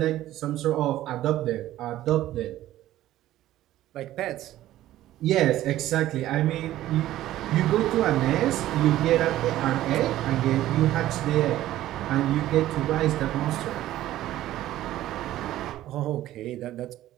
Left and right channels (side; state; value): left; quieter; 14.2 dB